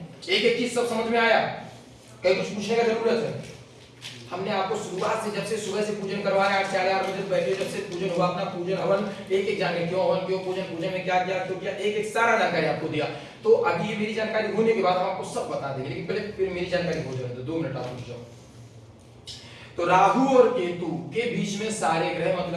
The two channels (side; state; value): both; identical; correlation 1.00